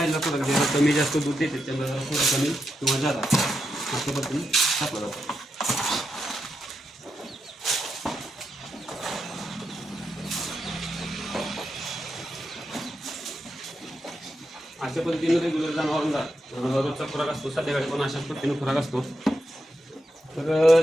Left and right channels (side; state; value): both; normal; correlation 0.85